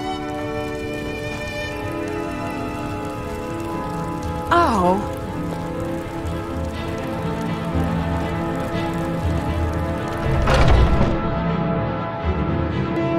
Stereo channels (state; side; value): identical; both; correlation 1.00